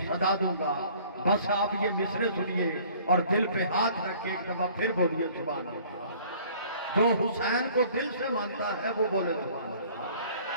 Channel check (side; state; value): both; inverted; correlation -0.53